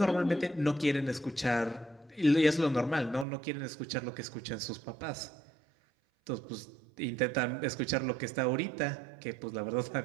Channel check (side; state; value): left; drops out; at 3.2 s